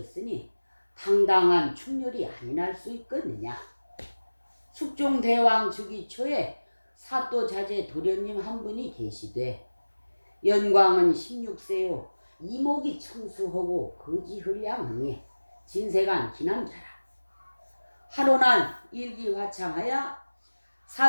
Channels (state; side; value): inverted; both; correlation -1.00